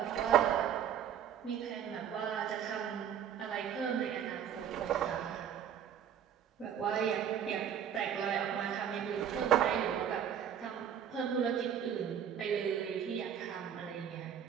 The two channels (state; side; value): quieter; left; 9.0 dB